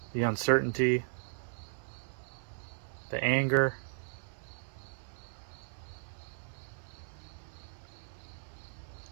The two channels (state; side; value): silent; left; 54 dB below the other